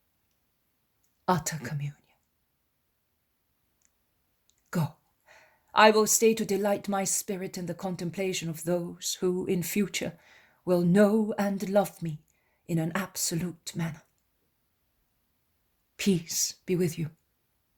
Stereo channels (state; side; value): identical; both; correlation 1.00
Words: Utter communion. Go. I will stay to delight my spirit in the contemplation of those who in future will know and love me in an absolute manner. Peace be with you.